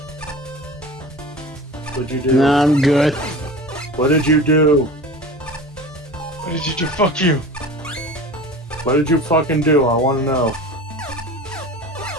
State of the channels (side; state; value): both; normal; correlation 0.37